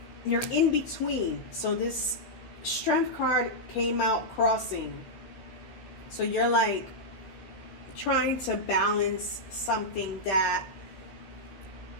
you're in between. So this Strength card came out crossing. So you're like trying to balance something that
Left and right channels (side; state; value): right; late; 16 ms